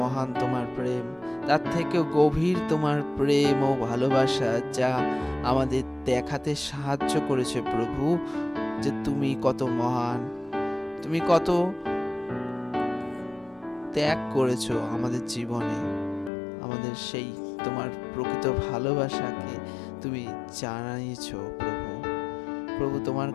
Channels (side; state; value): right; drops out; at 16.3 s